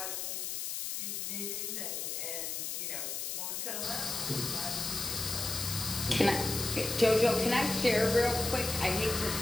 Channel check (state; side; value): noise; left; hiss, 3 dB below the sound